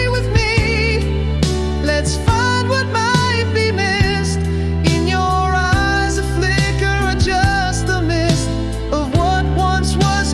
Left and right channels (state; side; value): identical; both; correlation 1.00